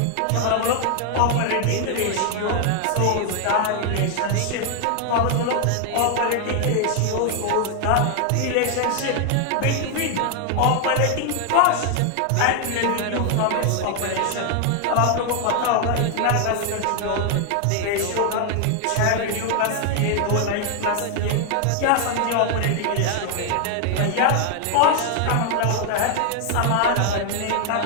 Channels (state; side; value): different; both; correlation 0.00